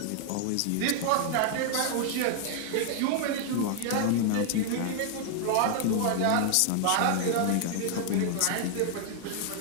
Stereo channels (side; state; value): both; different; correlation 0.00